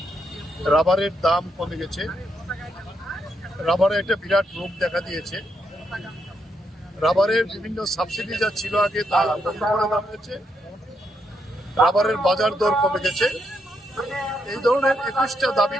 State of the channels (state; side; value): normal; both; correlation 0.79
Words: রাবারের দাম কমে গেছে, রাবারে একটা বিরাট রোগ দেখা দিয়েছে। রাবারের বিভিন্ন সাবসিডি যা ছিল আগে তা বন্ধ করে দেওয়া হয়েছে, রাবারের বাজার দর কমে গেছে। এই ধরনের 21টা দাবি